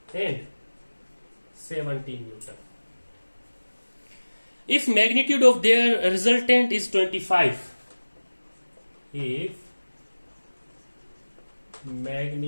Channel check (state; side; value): inverted; both; correlation -1.00